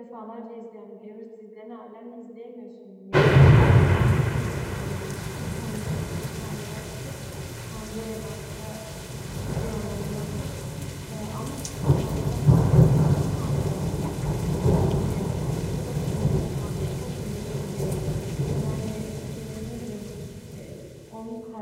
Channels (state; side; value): identical; both; correlation 1.00